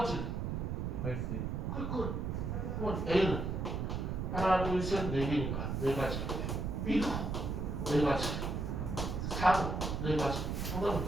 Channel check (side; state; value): right; noise; rumble, 2 dB below the sound